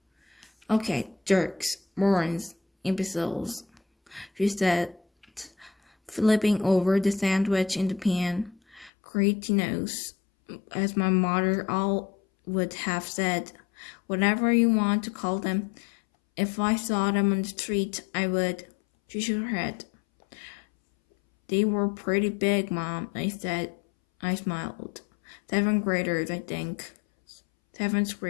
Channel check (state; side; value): drops out; right; at 8.9 s